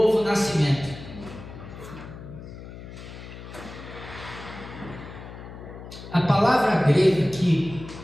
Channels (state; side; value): noise; left; hum, 13 dB below the sound